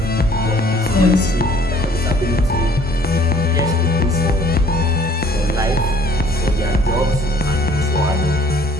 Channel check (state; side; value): normal; both; correlation 0.56